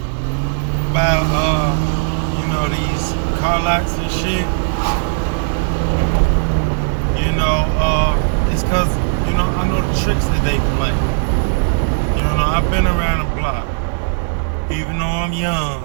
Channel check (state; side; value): silent; left; 58 dB below the other